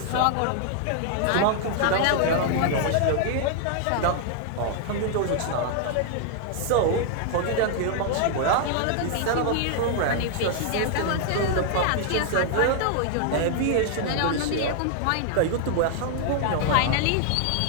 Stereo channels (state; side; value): different; both; correlation -0.01